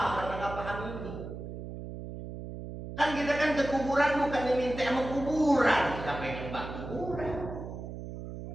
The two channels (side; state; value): right; noise; hum, 9 dB below the sound